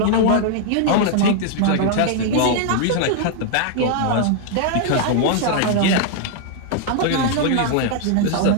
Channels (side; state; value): both; different; correlation 0.00